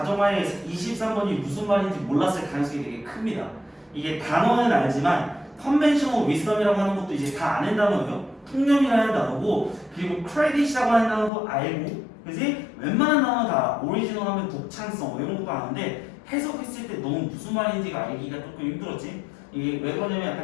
23번이 무슨 말인지 몰랐을 가능성이 되게 큽니다. 이게 단어는 알지만 컨벤셔널 위스덤이라고 하는 것도 이제 다 아는 단어예요. 통념이라는 단어고, 그리고 크레딧이라고 하는 단어도 알고, 그지? 웬만한 단어 다 오리지널 하면 독창성 이런 것도 아는데 해석했을 때 너무 무슨 말인지가 알기가 조금 힘들었지. 이게 왜 그러냐면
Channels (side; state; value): right; drops out; at 11.3 s